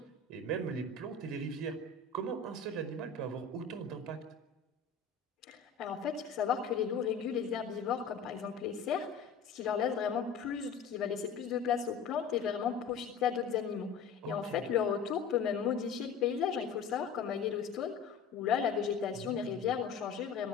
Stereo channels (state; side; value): quieter; right; 5.7 dB